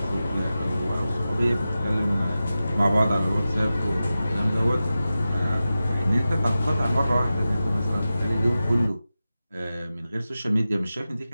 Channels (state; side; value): inverted; both; correlation -0.93